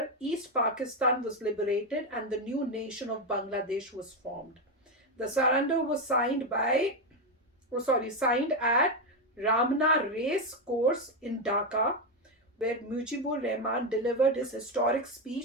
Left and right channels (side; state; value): both; normal; correlation 0.08